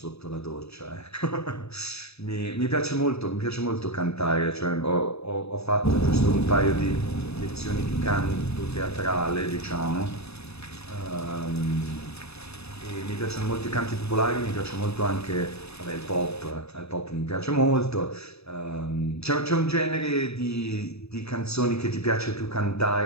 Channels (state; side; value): late; right; 0.79 ms